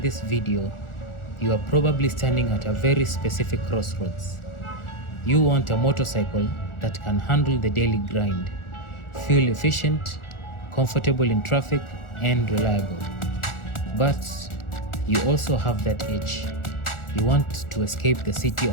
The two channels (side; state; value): right; late; 1.4 ms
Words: this video, you are probably standing at a very specific crossroads. You want a motorcycle that can handle the daily grind, fuel efficient, comfortable in traffic, and reliable. But you also have that itch. You want to escape the city